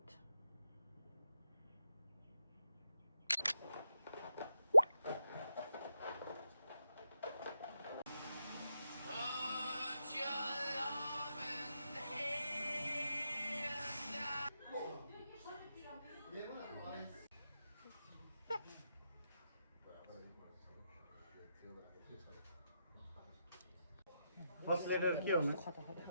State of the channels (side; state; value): both; inverted; correlation -0.85